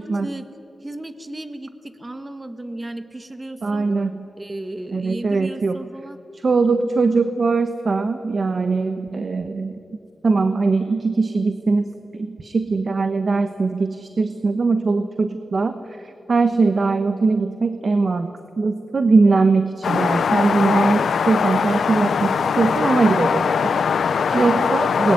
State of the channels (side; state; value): both; normal; correlation 0.89